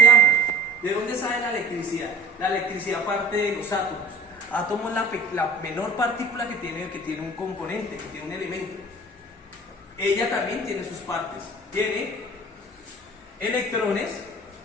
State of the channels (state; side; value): normal; both; correlation 0.42